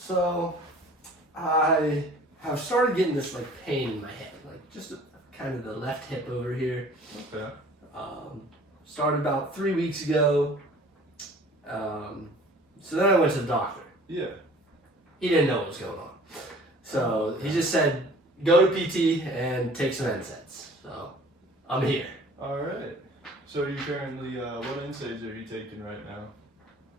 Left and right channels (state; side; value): normal; both; correlation 0.49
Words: I have started getting this pain in my hip, just kind of the left hip over here. Okay. Started about 3 weeks ago. So then I went to the doctor. Yeah. He didn't know what was going on. So he just said, go to PT and take some NSAIDs. So I'm here. Alright. So are you currently, what NSAIDs are you taking right